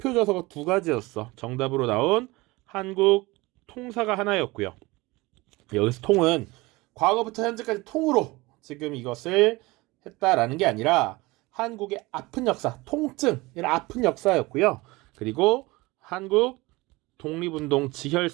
저서가 2가지였어. 정답으로 나온 한국 통사가 하나였고요. 여기서 통은 과거부터 현재까지 통으로 지금 이것을 했다라는 게 아니라 한국의 아픈 역사, 통증, 이런 아픈 역사였고요. 그리고 한국 독립운동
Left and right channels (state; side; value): quieter; left; 22.0 dB